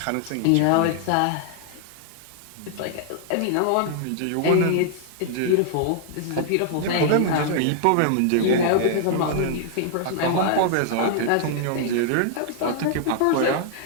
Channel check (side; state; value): both; different; correlation -0.01